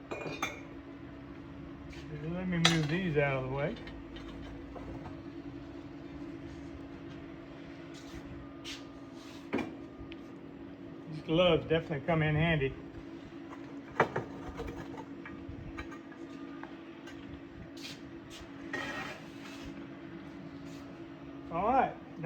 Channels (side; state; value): both; identical; correlation 1.00